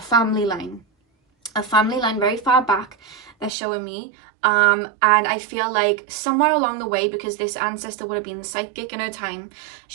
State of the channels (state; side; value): drops out; left; at 3.5 s